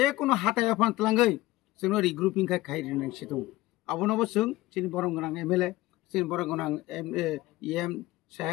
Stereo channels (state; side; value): quieter; right; 17.9 dB